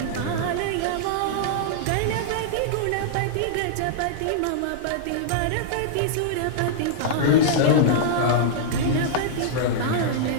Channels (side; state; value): both; different; correlation -0.02